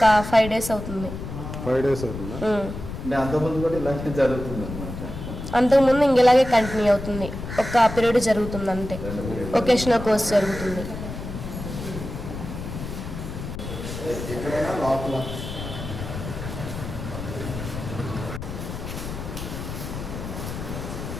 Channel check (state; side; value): noise; left; rumble, 8 dB below the sound